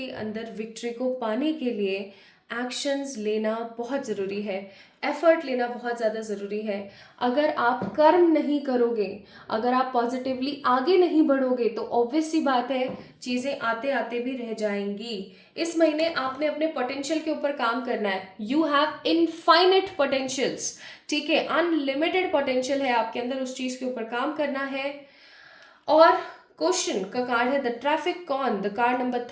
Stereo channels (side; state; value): both; identical; correlation 1.00